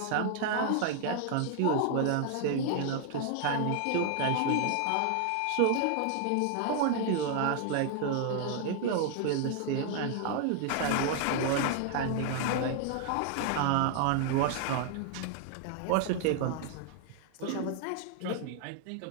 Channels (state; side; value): different; both; correlation 0.00